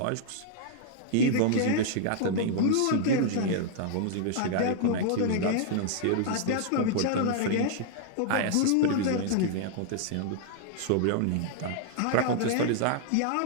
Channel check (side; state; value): both; different; correlation -0.01